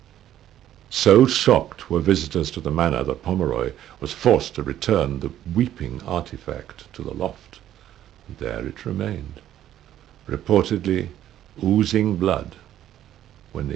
So shocked were visitors to the manor that Pomeroy was forced to return the weeping artifact to the loft. There it remained, reportedly oozing blood, when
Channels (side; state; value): left; quieter; 11.8 dB